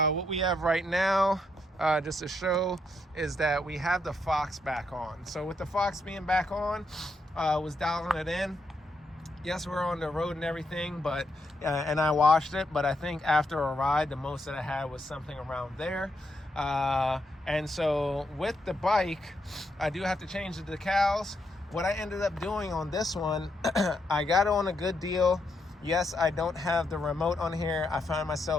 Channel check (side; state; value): both; normal; correlation 0.79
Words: we have right now, just to show, is that we have the Fox back on. So with the Fox being back on, was dialing it in. Yes, we're on the road and everything, but and I washed it, but I think after a ride, the most that I had was something around there. And so with the bike, I do have to change the decals. What I ended up doing on this one, I got it on a good deal. Yes, I don't have the remote on here. I found